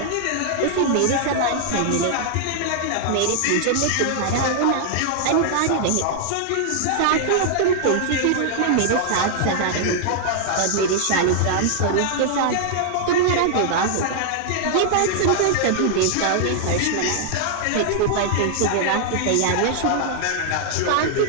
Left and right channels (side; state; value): both; different; correlation 0.00